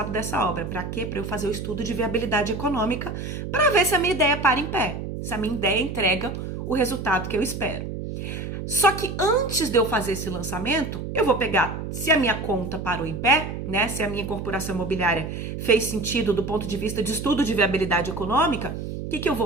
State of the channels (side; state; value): right; noise; hum, 6 dB below the sound